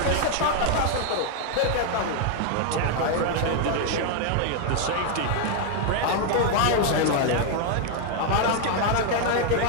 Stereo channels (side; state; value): both; different; correlation 0.00